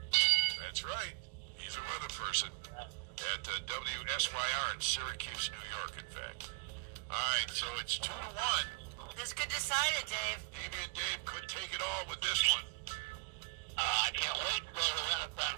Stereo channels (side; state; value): left; quieter; 29.9 dB